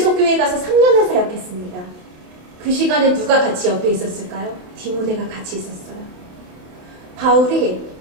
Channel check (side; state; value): left; late; 28 ms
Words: 교회 가서 3년을 사역했습니다. 그 시간에 누가 같이 옆에 있었을까요? 디모데가 같이 있었어요. 바울이